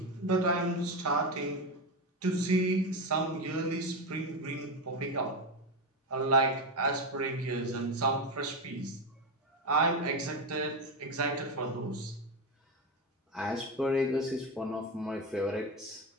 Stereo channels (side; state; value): both; normal; correlation 0.15